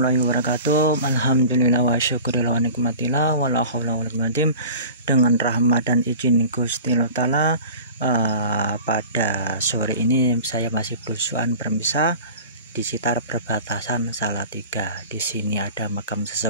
wabarakatuh. Alhamdulillah wa syukurillah wa nikmatillah wa la haula wa la quwwata illa billah. Dengan rahmat dan izin Gusti Allah Ta'ala, pada sore ini saya masih berusuhan bermisah di sekitar perbatasan Salatiga. Di sini ada makam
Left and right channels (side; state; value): both; inverted; correlation -0.39